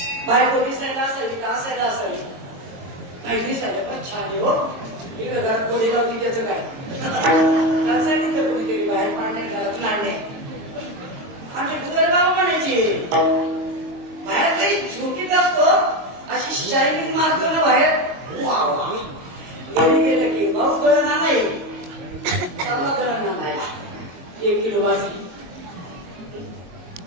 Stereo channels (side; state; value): left; late; 22 ms